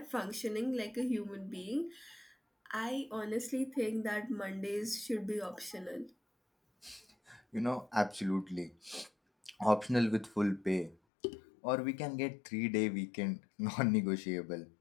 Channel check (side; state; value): right; drops out; at 11.0 s